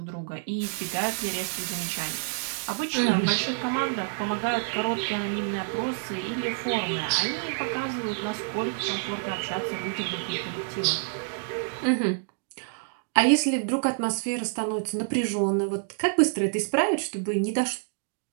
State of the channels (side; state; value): left; silent; 59 dB below the other